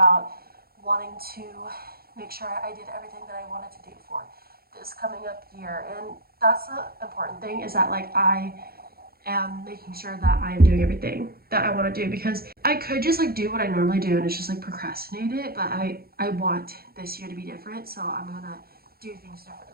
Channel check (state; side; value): late; left; 0.44 ms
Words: wanting to make sure I did everything that I wanted to do for this coming up year. And that's the important thing, is that like I am making sure that I am doing everything that I want to do, because I could just like do what I normally do and it's just like procrastinate it, but I want this year to be different, so I'm gonna do things